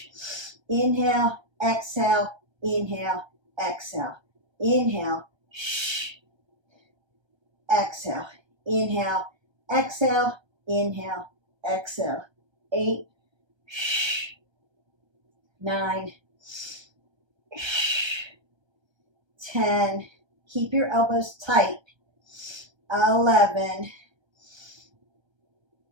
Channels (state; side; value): late; left; 1.3 ms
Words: Inhale, exhale, inhale, exhale. Inhale, exhale. Inhale, exhale, inhale, exhale. 8, 9, 10. Keep your elbows tight. 11,